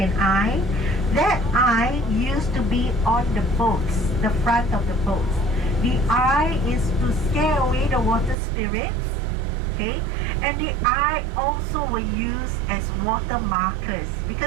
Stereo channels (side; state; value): left; drops out; at 8.3 s